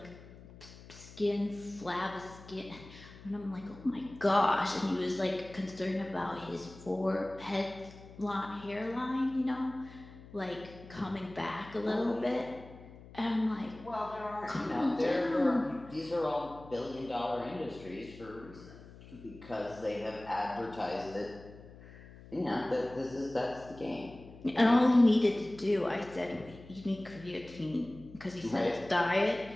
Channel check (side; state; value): left; noise; hum, 18 dB below the sound